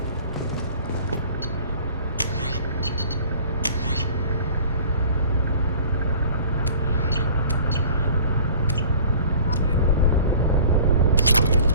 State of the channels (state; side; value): inverted; both; correlation -0.46